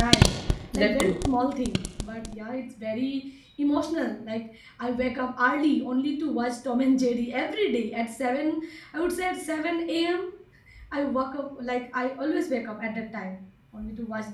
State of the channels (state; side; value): identical; both; correlation 1.00